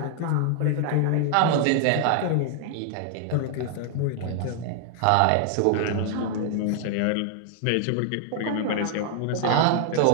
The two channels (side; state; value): both; different; correlation 0.00